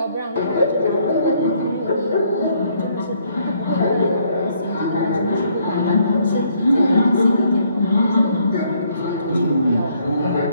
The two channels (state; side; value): inverted; both; correlation -0.68